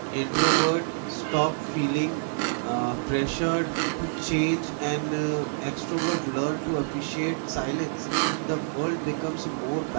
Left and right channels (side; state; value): left; silent; digital silence